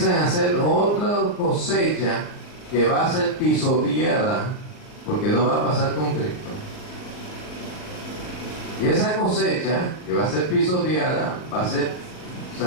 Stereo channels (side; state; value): right; late; 39 ms